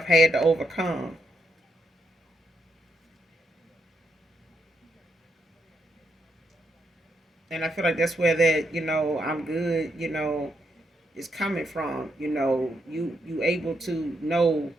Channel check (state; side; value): normal; both; correlation 0.80